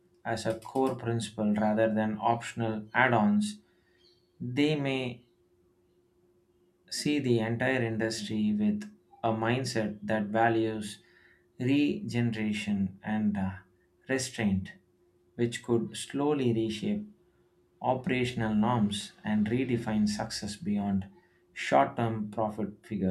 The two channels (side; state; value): both; identical; correlation 1.00